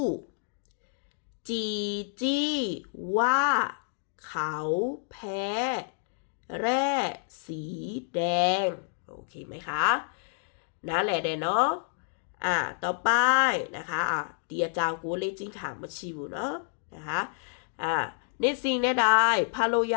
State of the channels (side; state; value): right; silent; digital silence